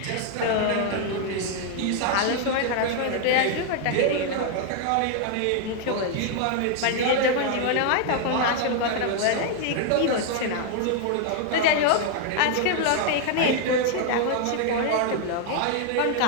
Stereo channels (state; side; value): different; both; correlation 0.00